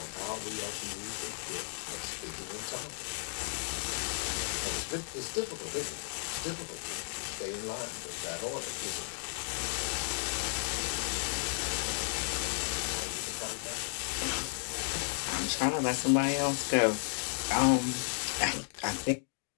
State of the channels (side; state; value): right; silent; digital silence